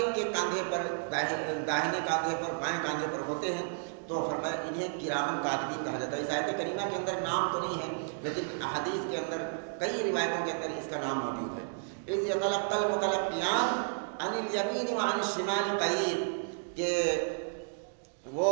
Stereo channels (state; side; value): silent; left; digital silence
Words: کے کاندھے پر، داہنے کاندھے پر، بائیں کاندھے پر ہوتے ہیں، تو فرمایا انہیں کرامن کاتبین کہا جاتا ہے۔ اس آیت کریمہ کے اندر نام تو نہیں ہے، لیکن حدیث کے اندر کئی روایتوں کے اندر اس کا نام موجود ہے۔ اِذْ يَتَلَقَّى الْمُتَلَقِّيَانِ عَنِ الْيَمِينِ وَعَنِ الشِّمَالِ قَعِيدٌ، کہ وہ